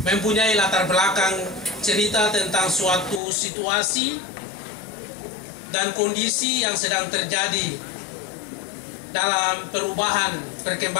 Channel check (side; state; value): right; drops out; at 3.2 s